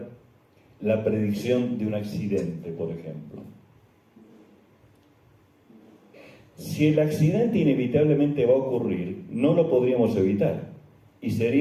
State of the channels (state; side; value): identical; both; correlation 1.00